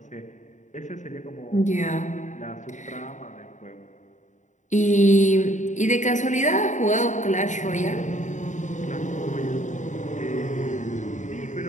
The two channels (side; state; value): right; late; 0.36 ms